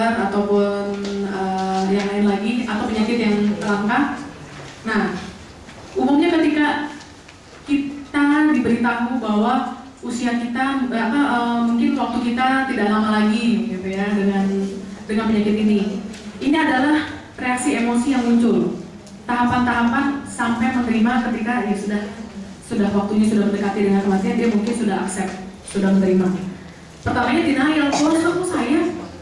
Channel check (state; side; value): identical; both; correlation 1.00